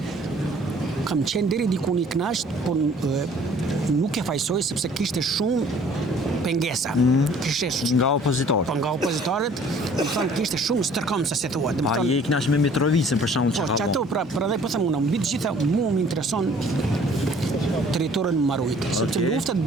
Kam qenë deri diku një knasht, po nuk e fajsoj sepse kishte shumë pengesa. Nga opozitorët. Po nga opozitorët, do të thonë kishte shumë stërkomsa se thuat. A je i knasht me Mitrovicin për shembull çka? Po çato pra edhe po them unë, mbi të gjitha mua më intereson territorin marrujt, sepse luftat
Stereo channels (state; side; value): normal; both; correlation 0.54